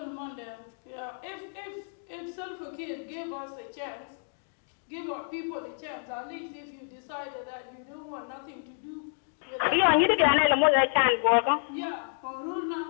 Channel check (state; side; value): silent; right; 58 dB below the other